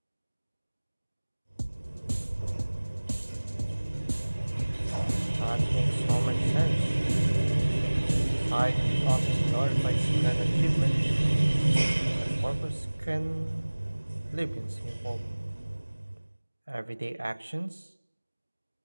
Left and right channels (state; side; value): inverted; both; correlation -1.00